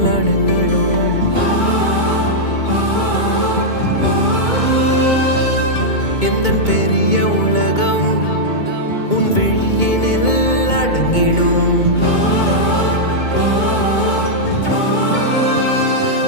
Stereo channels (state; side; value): late; right; 2.2 ms